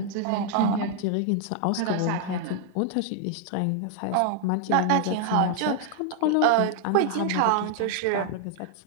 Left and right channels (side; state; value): both; different; correlation 0.00